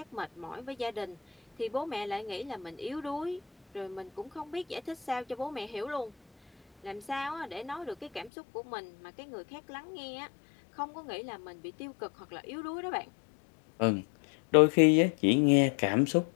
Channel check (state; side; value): drops out; right; at 8.3 s